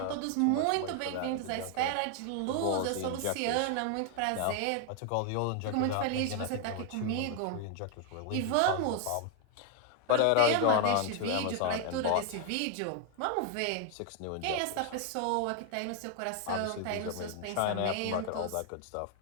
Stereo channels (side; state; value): both; different; correlation 0.00